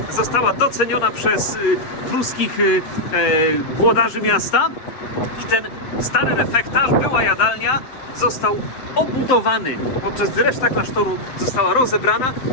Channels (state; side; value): late; right; 7.7 ms